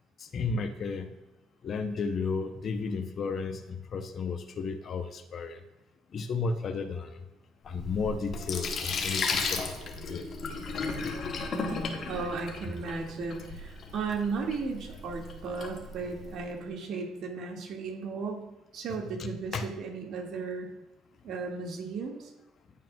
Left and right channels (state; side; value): normal; both; correlation 0.65